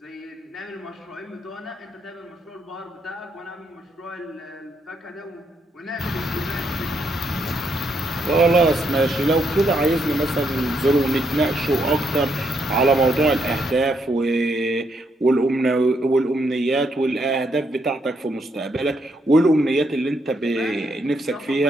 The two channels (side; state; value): both; normal; correlation 0.76